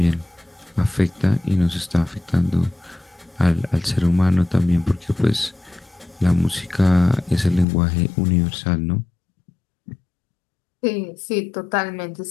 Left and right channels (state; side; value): drops out; right; at 7.7 s